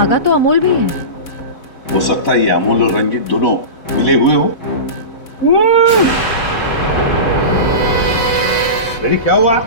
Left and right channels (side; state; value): right; late; 4.0 ms